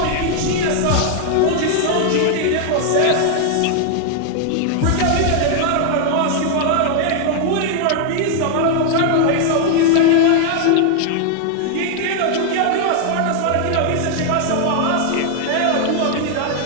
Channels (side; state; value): both; different; correlation 0.00